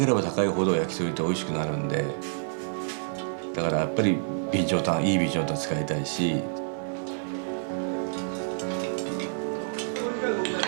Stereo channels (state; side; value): silent; left; digital silence